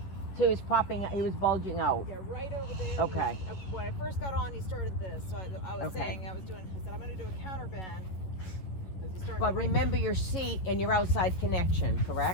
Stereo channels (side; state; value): right; late; 11 ms